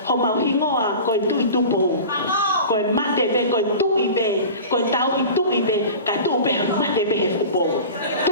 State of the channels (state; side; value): inverted; both; correlation -0.36